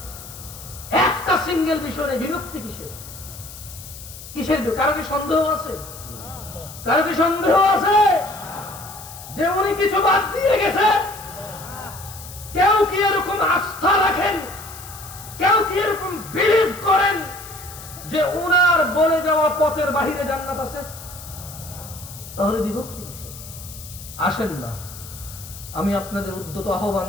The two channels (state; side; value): noise; left; hiss, 15 dB below the sound